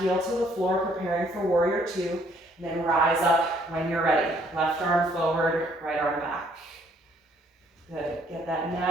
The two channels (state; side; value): normal; both; correlation 0.65